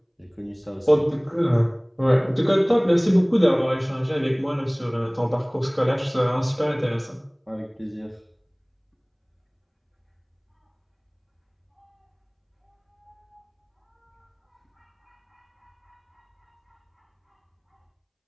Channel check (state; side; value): identical; both; correlation 1.00